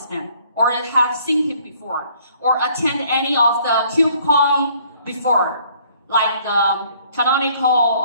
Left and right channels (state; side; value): inverted; both; correlation -0.61